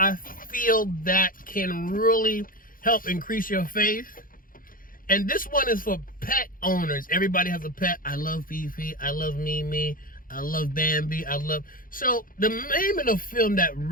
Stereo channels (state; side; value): late; right; 0.41 ms